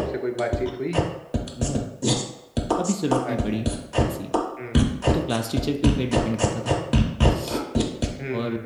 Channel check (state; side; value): identical; both; correlation 1.00